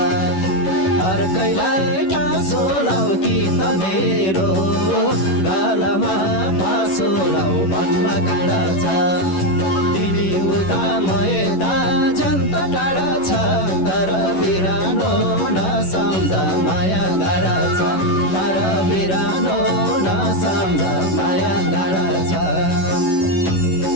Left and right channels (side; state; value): right; late; 11 ms